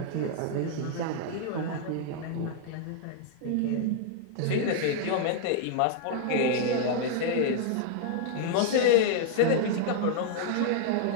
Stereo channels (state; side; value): different; both; correlation -0.01